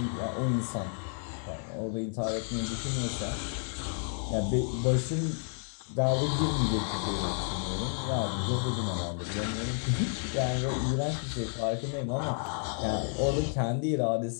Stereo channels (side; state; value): right; silent; 57 dB below the other